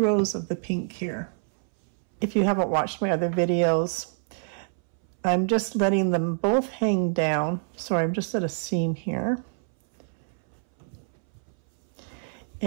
rows of the pink here. If you haven't watched my other videos, I'm just letting them both hang down. So I'm just at a seam here.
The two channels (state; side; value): silent; left; 60 dB below the other